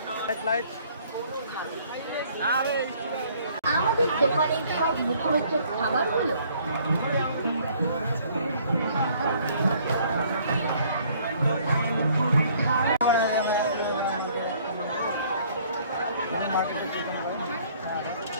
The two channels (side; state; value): both; inverted; correlation -0.60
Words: 100। আমাদের দোকানের সব মুখরোচক খাবারগুলো